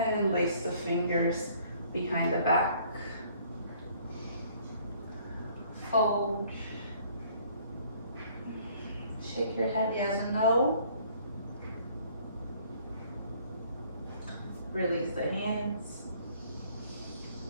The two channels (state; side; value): inverted; both; correlation -0.59